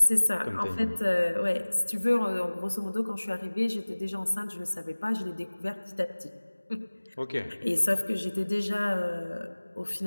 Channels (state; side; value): inverted; both; correlation -1.00